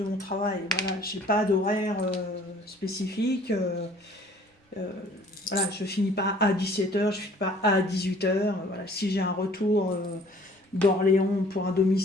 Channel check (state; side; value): normal; both; correlation 0.54